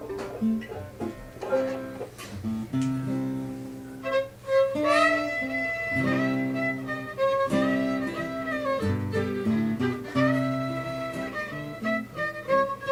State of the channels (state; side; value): identical; both; correlation 1.00